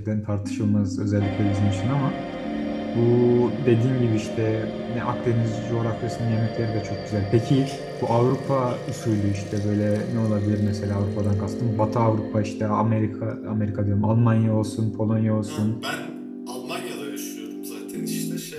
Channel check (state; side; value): identical; both; correlation 1.00